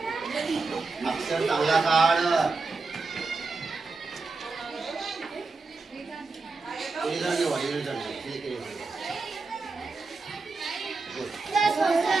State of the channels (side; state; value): left; quieter; 4.0 dB